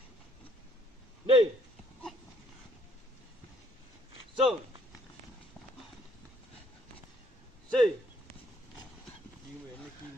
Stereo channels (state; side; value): normal; both; correlation 0.65